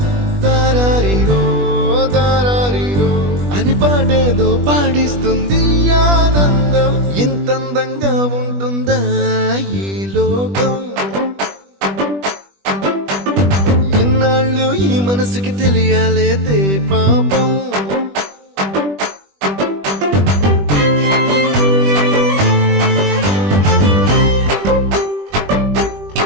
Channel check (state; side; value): late; left; 20 ms